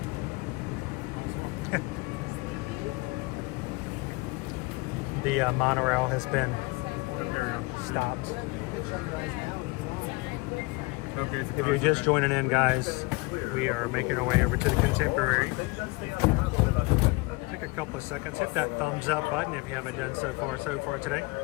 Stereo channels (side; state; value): right; quieter; 25.7 dB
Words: The monorail has been stopped. Okay, If you're just joining in, guys, we are making our way over to the Contemporary. Take a couple of seconds. Hit that thumbs up button if you haven't done so far today.